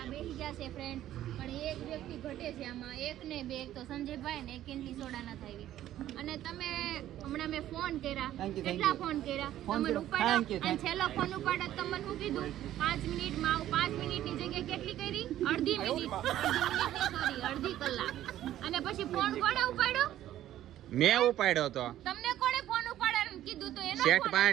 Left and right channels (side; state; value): left; quieter; 12.8 dB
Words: બેસી ગયા છે ફ્રેન્ડ, પણ એક વ્યક્તિ ઘટે છે આમાં, એક ને બે, એક તો સંજયભાઈ ને એક ઇન્ટલી સોડા નથી આવી. અને તમે હમણાં મેં ફોન કર્યા, Thank you, કેટલા ફોન કર્યા ફોન તમે કર્યો. ઉપાડ્યો, Thank you, અને છેલ્લો ફોન ઉપાડ્યો તમને શું કીધું 5 મિનિટમાં આવું. 5 મિનિટની જગ્યાએ કેટલી કરી? અડધી મિનિટ, અડધી કલાક. અને પછી ફોન કોણે ઉપાડ્યો? મેં ઉપાડ્યો તો. તમને કોણે ફોન ઉપાડવાનું કીધું? તો એનો સેટ ફોન પાસે